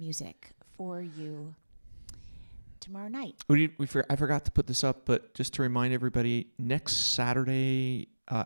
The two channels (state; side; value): inverted; both; correlation -1.00